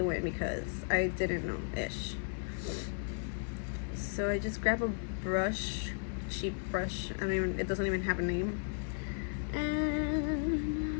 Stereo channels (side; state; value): right; silent; digital silence